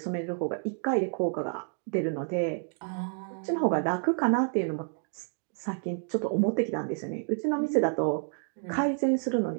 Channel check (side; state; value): left; silent; 57 dB below the other